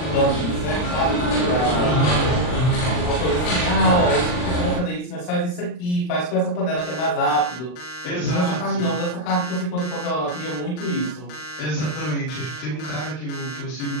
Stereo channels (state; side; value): late; right; 39 ms